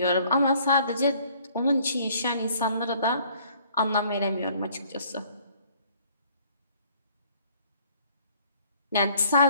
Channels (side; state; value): both; inverted; correlation -0.59